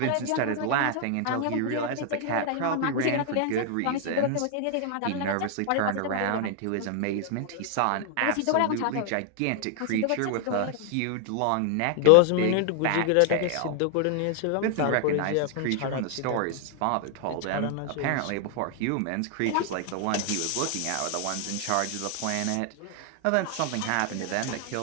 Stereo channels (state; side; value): different; both; correlation 0.00